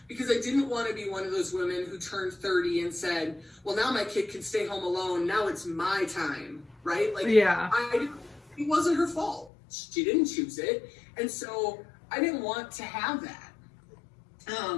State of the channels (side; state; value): right; drops out; at 9.5 s